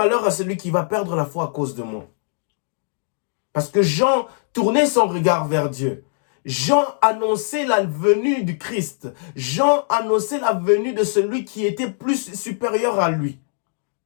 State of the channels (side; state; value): right; silent; digital silence